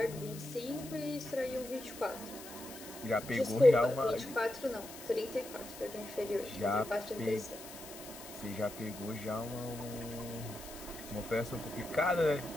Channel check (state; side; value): noise; left; hiss, 14 dB below the sound